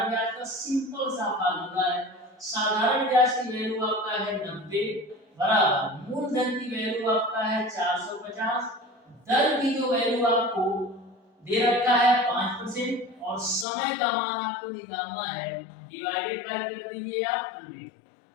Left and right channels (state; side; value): drops out; right; at 13.7 s